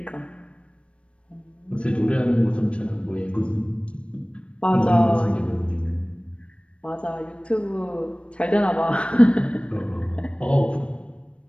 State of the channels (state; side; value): late; right; 0.060 ms